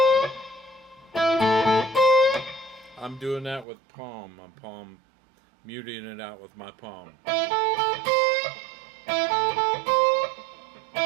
I'm doing that with palm. I'm muting it out with my palm.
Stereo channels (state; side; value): drops out; left; at 3.7 s